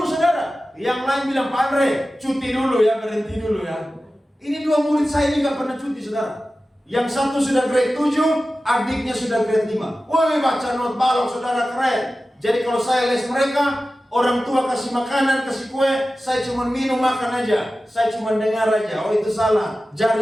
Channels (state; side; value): normal; both; correlation 0.95